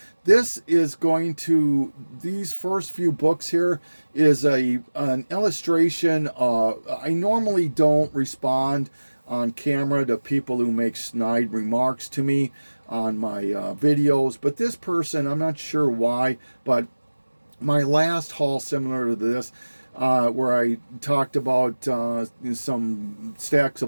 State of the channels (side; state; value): both; inverted; correlation -1.00